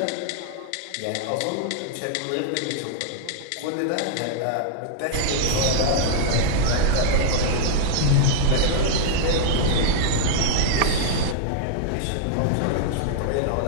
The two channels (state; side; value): different; both; correlation -0.01